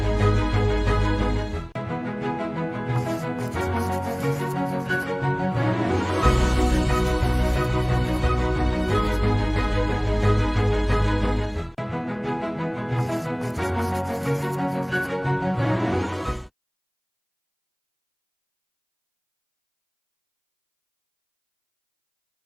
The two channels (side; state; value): both; identical; correlation 1.00